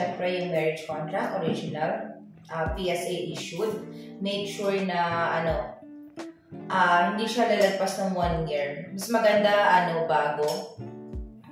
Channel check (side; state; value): both; identical; correlation 1.00